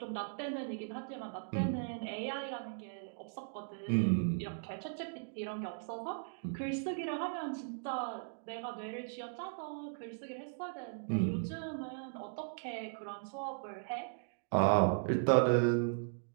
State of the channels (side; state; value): left; silent; digital silence